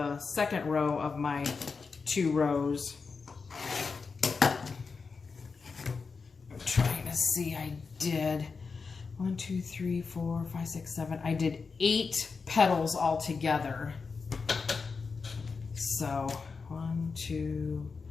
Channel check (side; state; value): right; quieter; 4.9 dB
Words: second row of my 2 rows. I'm trying to see, I did 1, 2, 3, 4, 5, 6, 7. I did 8 petals all together. So 1, 2,